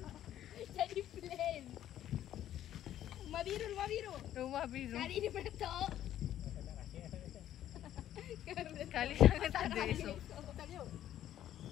Jadi flame. Rumah biru. Rumah biru. Kali ni meletup. Kali sangat tak ada esok.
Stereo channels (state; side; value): quieter; right; 11.7 dB